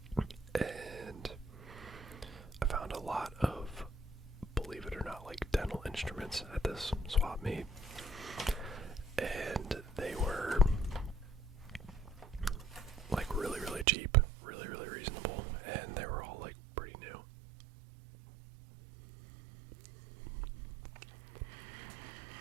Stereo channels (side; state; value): left; drops out; at 13.9 s